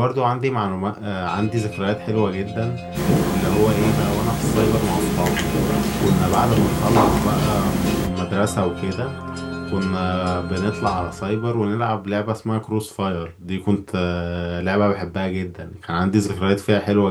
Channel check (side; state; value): both; identical; correlation 1.00